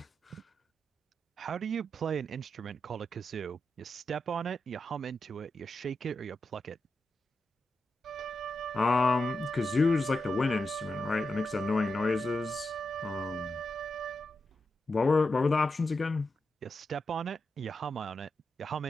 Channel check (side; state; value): both; normal; correlation 0.87